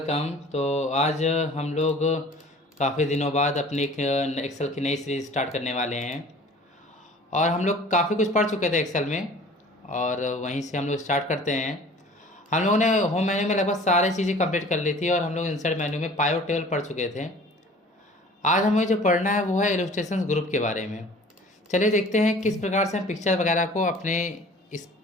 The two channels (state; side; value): normal; both; correlation 0.47